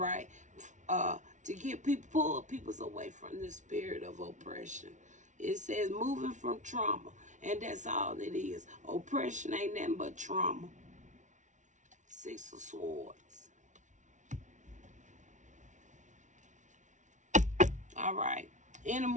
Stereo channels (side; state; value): left; late; 0.36 ms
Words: to get people, pull people away from the spirit of oppression. It says moving from trauma, and that's all it is. Oppression ain't nothing but trauma. Six of Swords. All right. Any